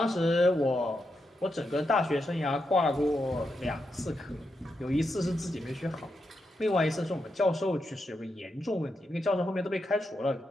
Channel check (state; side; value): normal; both; correlation 0.84